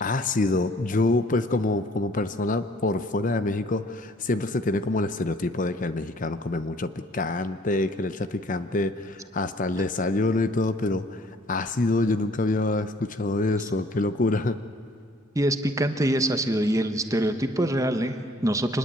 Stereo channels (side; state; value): both; normal; correlation 0.58